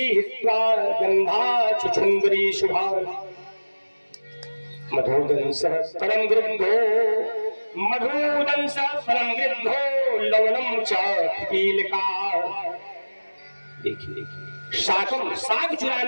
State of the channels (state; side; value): inverted; both; correlation -1.00